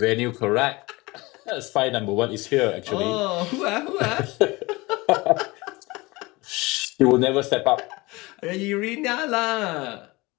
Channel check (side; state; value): right; quieter; 22.7 dB